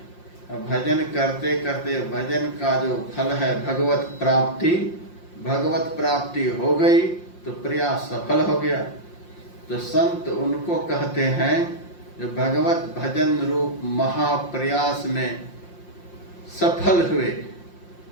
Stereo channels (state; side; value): late; right; 5.7 ms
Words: भजन करते करते भजन का जो फल है भगवत प्राप्ति, भगवत प्राप्ति हो गई तो प्रयास सफल हो गया। तो संत उनको कहते हैं जो भगवत भजन रूप महाप्रयास में सफल हुए